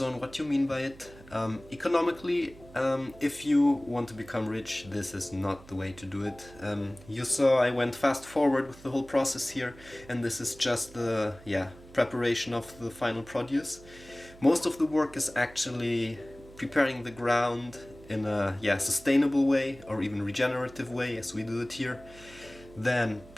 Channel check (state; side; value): noise; right; hum, 21 dB below the sound